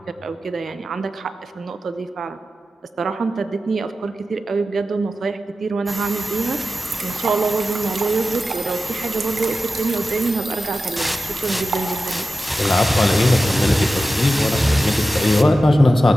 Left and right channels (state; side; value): normal; both; correlation 0.93